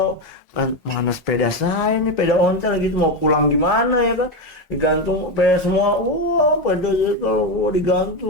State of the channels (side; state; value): both; normal; correlation 0.12